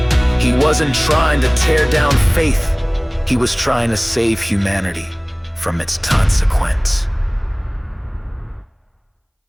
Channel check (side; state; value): both; identical; correlation 1.00